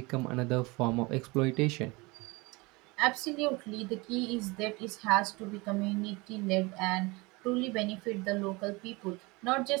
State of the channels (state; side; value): quieter; left; 24.8 dB